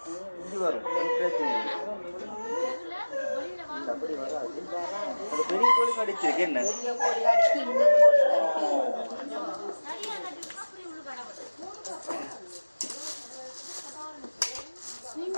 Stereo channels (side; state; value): both; inverted; correlation -1.00